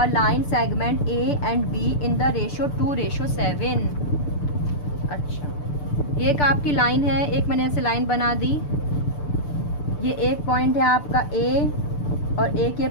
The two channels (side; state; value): right; late; 6.8 ms